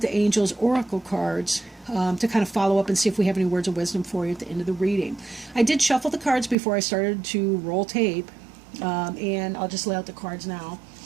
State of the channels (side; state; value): left; drops out; at 6.6 s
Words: Angels Oracle cards, to kind of follow up and see if we have any words of wisdom for you at the end of the reading. I did shuffle the cards before I started to roll tape, and I'll just lay out the cards now.